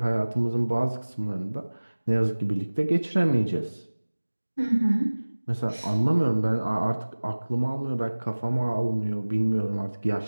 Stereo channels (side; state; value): both; inverted; correlation -1.00